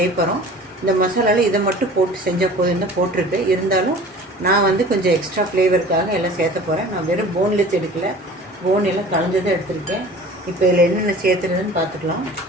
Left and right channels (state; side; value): normal; both; correlation 0.43